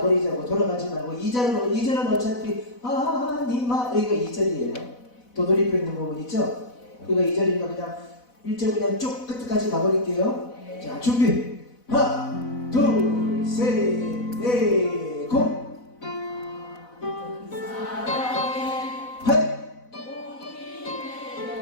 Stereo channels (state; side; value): late; right; 4.0 ms